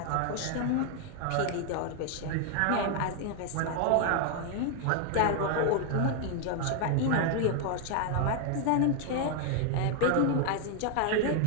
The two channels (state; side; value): different; both; correlation 0.00